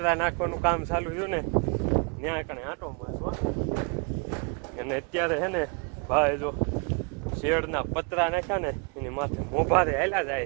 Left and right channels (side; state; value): left; quieter; 34.2 dB